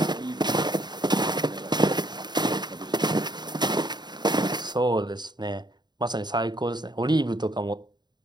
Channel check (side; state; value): left; late; 0.21 ms